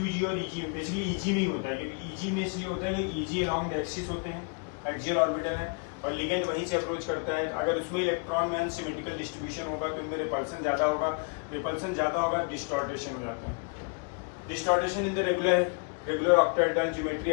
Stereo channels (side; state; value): right; quieter; 38.2 dB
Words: और EG, बेसिकली EG में ही होता है, क्योंकि EG में इसलिए होता है कि EG अलॉन्ग द एक्सिस होते हैं, एक्सियल ऑर्बिटल है, और लिगेंड वहीं से अप्रोच करता है। अगर उसमें इलेक्ट्रॉन में अनसिमेट्रिकल डिस्ट्रीब्यूशन होगा तो इनमें रिपल्सन ज़्यादा होगा, रिपल्सन ज़्यादा होगा, डिस्टॉर्टेशन हो जाता है। Distortion in the regular octahedral geometry